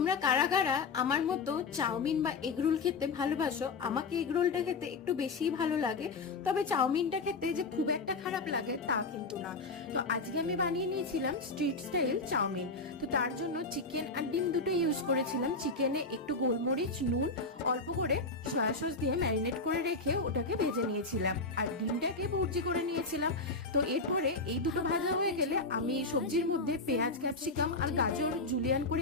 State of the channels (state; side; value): quieter; right; 3.7 dB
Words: কারা কারা আমার মতো চাউমিন বা এগরোল খেতে ভালোবাসো? আমাকে এগরোলটা খেতে একটু বেশি ভালো লাগে, তবে চাউমিনটা খেতে যে খুব একটা খারাপ লাগে তা কিন্তু না। তো আজকে আমি বানিয়ে নিয়েছিলাম স্ট্রিট স্টাইল চাউমিন। তো তার জন্য চিকেন আর ডিম দুটো ইউজ করেছিলাম। চিকেনে একটু গোলমরিচ, নুন, অল্প করে সয়া সস দিয়ে ম্যারিনেট করে রেখে ওটাকে ভেজে নিয়েছিলাম, আর ডিমটাকে ভুর্জি করে নিয়েছিলাম। তো এরপরে এই দুটো ভাজা হয়ে গেলে আমি সবজির মধ্যে পেঁয়াজ, ক্যাপসিকাম আর গাজর জুলিয়ান